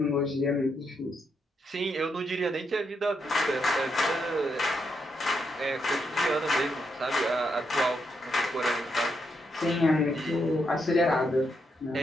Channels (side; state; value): both; normal; correlation 0.80